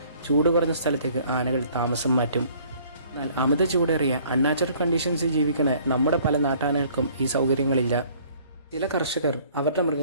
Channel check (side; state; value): both; inverted; correlation -0.57